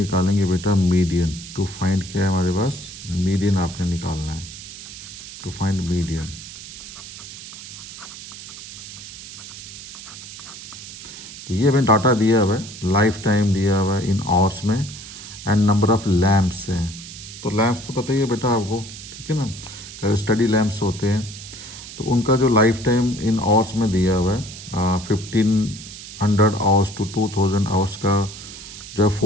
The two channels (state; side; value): noise; right; hiss, 13 dB below the sound